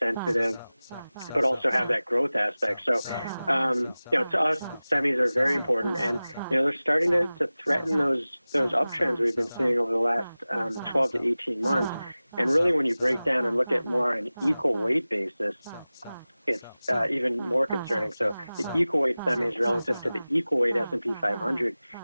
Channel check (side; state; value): both; inverted; correlation -0.97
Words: sensitive, but also have that growth aspect. So, to us, semis are very important, and, they're starting to threaten those uptrends we've been seeing over the last 12 to 18 months. And really, when you break down and look at more on an equal weight basis, it's even more concerning. So the equal weight semis relative to the equal weight S&P 500